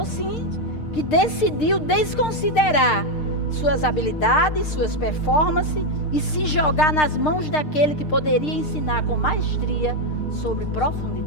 sim, que decidiu desconsiderar suas habilidades, suas performances e se jogar nas mãos daquele que poderia ensinar com maestria sobre profundidade.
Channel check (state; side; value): late; right; 6.6 ms